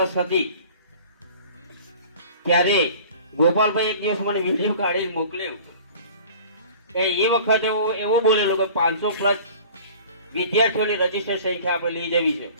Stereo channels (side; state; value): both; inverted; correlation -0.45